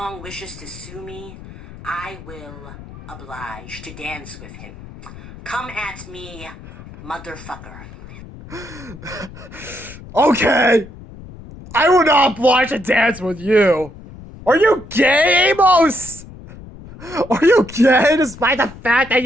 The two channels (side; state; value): left; noise; rumble, 16 dB below the sound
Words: wishes to sue me, I will oblige to dance with him. Come at me, motherfucker. Okay. I will not oblige to dance with you. Are you gay, Amos? Are you gay despite the fact that